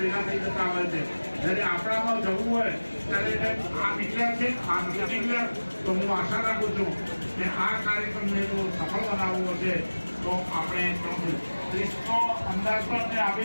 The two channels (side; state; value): both; inverted; correlation -1.00